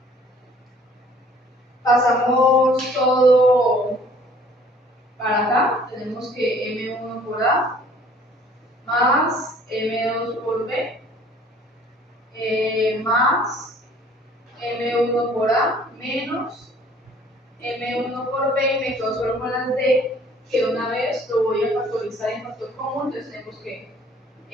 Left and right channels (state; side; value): normal; both; correlation 0.55